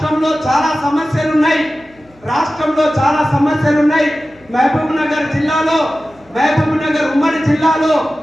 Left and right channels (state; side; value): noise; left; hum, 29 dB below the sound